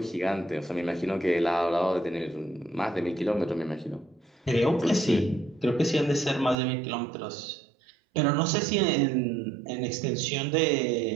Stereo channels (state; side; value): drops out; left; at 6.6 s